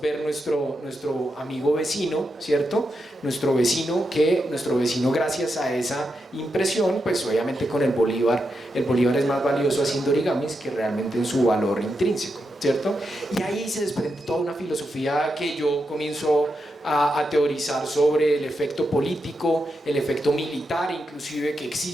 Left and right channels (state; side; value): normal; both; correlation 0.85